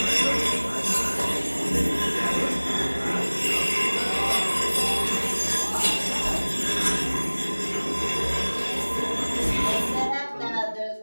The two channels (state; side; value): inverted; both; correlation -1.00